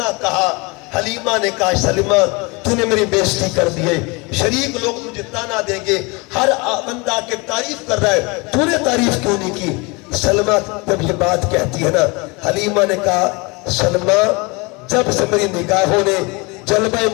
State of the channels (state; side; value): quieter; right; 27.3 dB